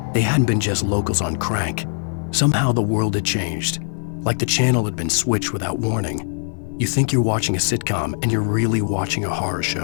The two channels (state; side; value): silent; right; 65 dB below the other